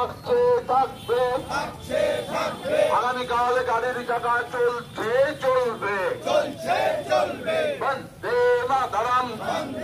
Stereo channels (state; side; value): identical; both; correlation 1.00